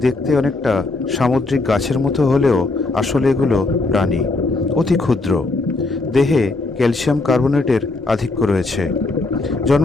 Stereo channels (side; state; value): right; quieter; 3.3 dB